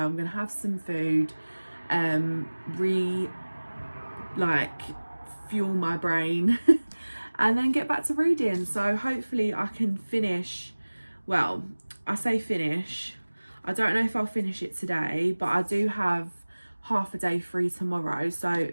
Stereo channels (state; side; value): inverted; both; correlation -1.00